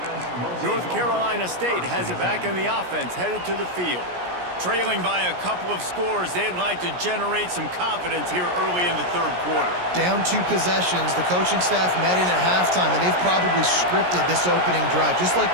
North Carolina State has it back in the offense, headed to the field. Trailing by a couple of scores, they'd like to generate some confidence here early in the third quarter. Down 2 possessions, the coaching staff met in at halftime, and they've probably scripted this opening drive. Just like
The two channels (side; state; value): left; late; 17 ms